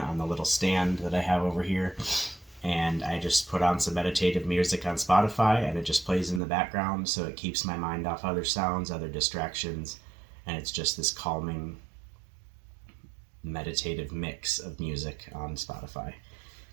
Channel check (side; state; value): left; drops out; at 6.4 s